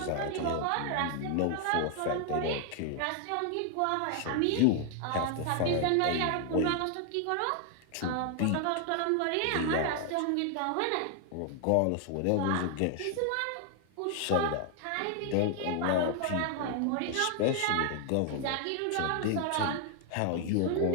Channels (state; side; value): different; both; correlation 0.00